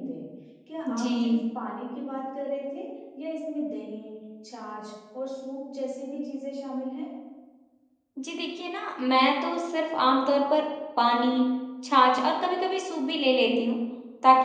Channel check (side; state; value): both; identical; correlation 1.00